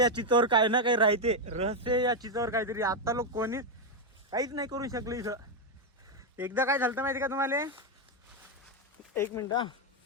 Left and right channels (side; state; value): both; normal; correlation 0.03